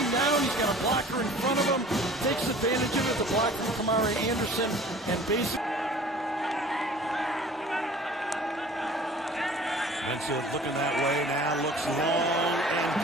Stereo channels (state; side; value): normal; both; correlation 0.47